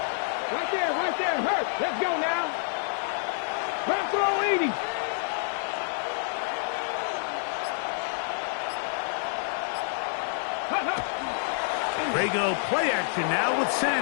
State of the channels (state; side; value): silent; right; 59 dB below the other